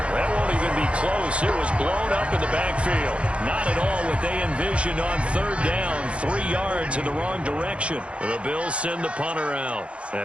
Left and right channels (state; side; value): late; left; 0.061 ms